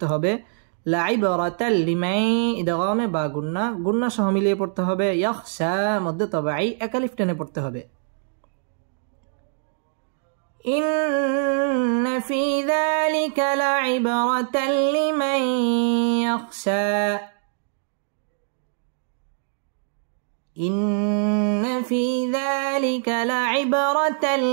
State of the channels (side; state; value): left; silent; digital silence